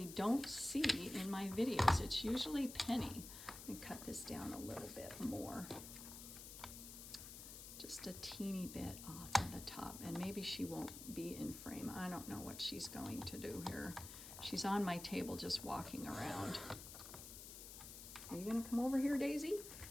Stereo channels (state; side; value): noise; left; hiss, 11 dB below the sound